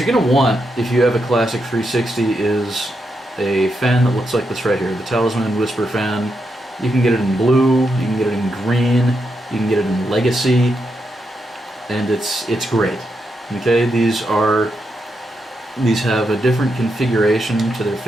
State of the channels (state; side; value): normal; both; correlation 0.83